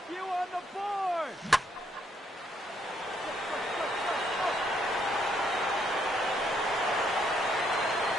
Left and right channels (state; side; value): normal; both; correlation 0.72